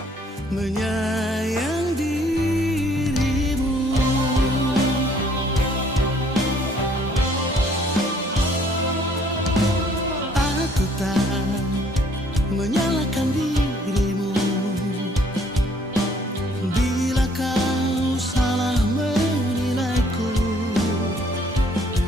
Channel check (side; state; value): both; normal; correlation 0.62